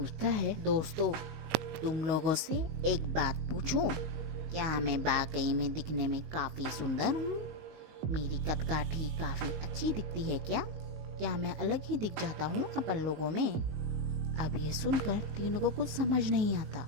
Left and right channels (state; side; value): late; left; 19 ms